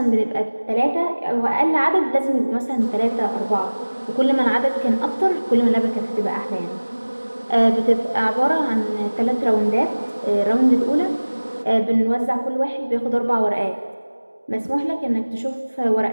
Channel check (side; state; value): both; inverted; correlation -1.00